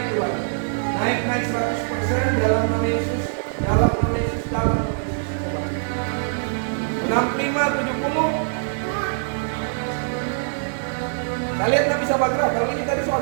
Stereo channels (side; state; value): left; silent; digital silence